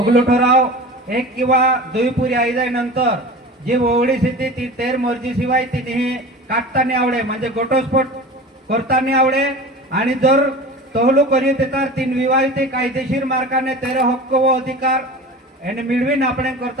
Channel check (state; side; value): normal; both; correlation 0.35